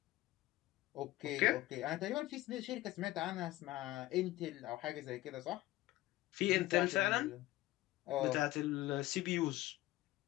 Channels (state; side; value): quieter; right; 17.1 dB